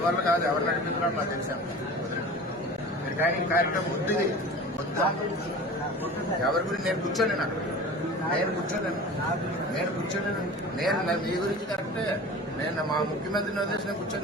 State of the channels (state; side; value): normal; both; correlation 0.37